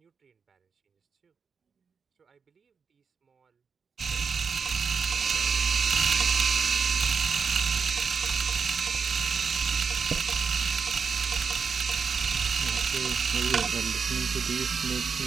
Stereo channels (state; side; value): quieter; left; 5.8 dB